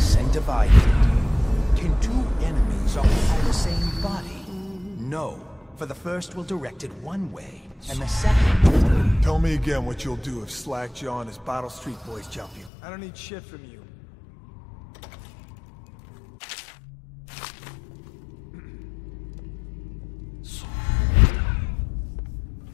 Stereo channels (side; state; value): right; drops out; at 12.7 s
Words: and divided. Can two enemies occupy the same body? No, for the first will direct it one way, and the second... Tell me again what you'll do if Slackjaw and his Bottle Street boys jump you. I don't need shit from you.